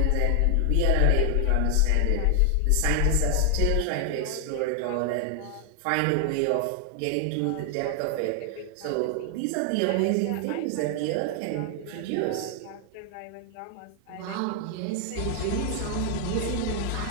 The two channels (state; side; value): different; both; correlation 0.00